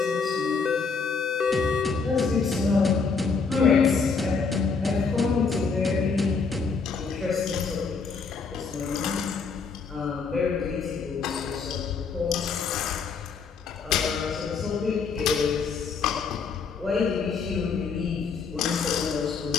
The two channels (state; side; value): quieter; right; 5.1 dB